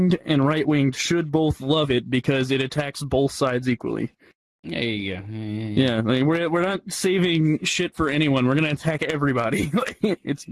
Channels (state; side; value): identical; both; correlation 1.00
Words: and right-winged should both love it because it attacks both sides equally. There you go. Yeah, like we're not saving shit for anyone. We're gonna attack everybody. It's